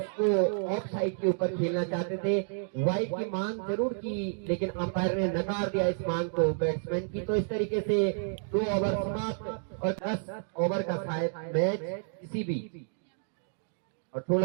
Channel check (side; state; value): left; silent; digital silence